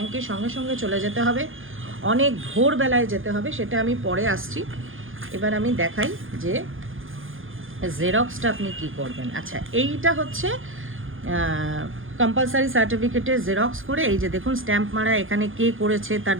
সঙ্গে সঙ্গে চলে যেতে হবে, অনেক ভোরবেলায় যেতে হবে, সেটা আমি পরে আসছি। এবার আমি দেখাই যে জেরক্সটা আপনি কি করবেন। আচ্ছা, এইটা হচ্ছে কম্পালসারি সার্টিফিকেটের জেরক্স করে, এই যে দেখুন স্ট্যাম্প মারা, এখানে কে করেছে, তার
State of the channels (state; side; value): late; left; 0.58 ms